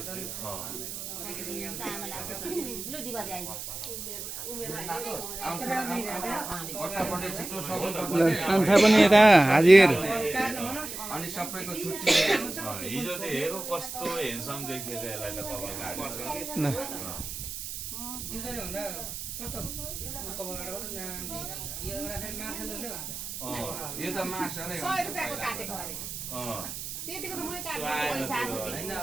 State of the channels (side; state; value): right; noise; hiss, 7 dB below the sound